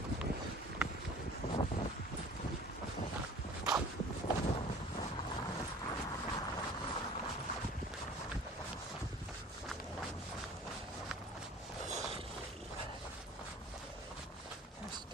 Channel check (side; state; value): both; normal; correlation 0.46